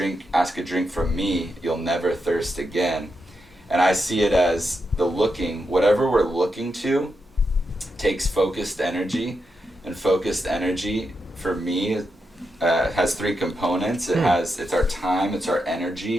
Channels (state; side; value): normal; both; correlation 0.85